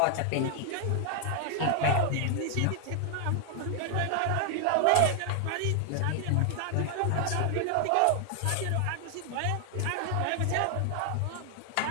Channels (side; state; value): both; different; correlation 0.00